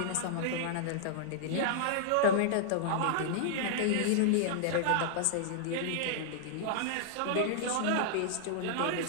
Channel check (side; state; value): both; different; correlation -0.01